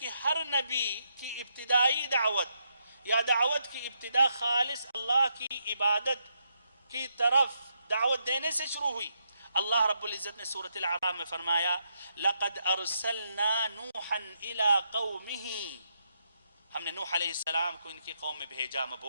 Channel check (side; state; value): both; inverted; correlation -0.79